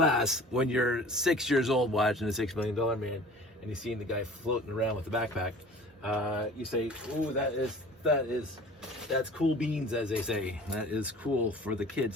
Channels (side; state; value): both; normal; correlation 0.45